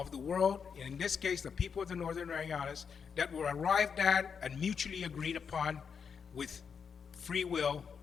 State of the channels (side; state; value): right; quieter; 6.4 dB